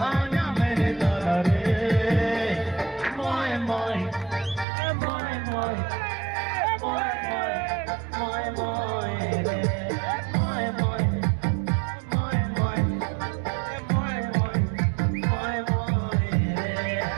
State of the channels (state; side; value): drops out; left; at 4.7 s